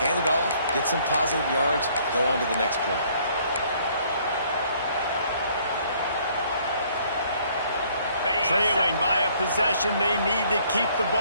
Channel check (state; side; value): inverted; both; correlation -0.62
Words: hand it off, get some positive yards, go on to the next play. Trailing by a possession, they need to keep the